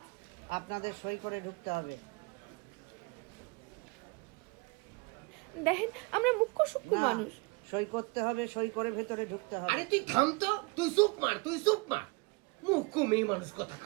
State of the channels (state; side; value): quieter; left; 27.9 dB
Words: আপনাদের সই করে ঢুকতে হবে। দেখেন আমরা মুখ্য সূক্ষ্ম মানুষ। সই করতে হবে, সই করে ভেতরে ঢুকতে হবে। আরে তুই থাম তো, তুই চুপ মার। মুখ মেয়ে মানুষ কথা